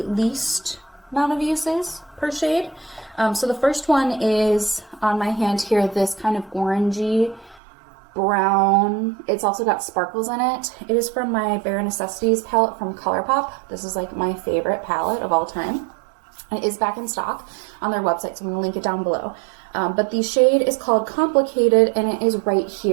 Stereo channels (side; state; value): left; drops out; at 7.6 s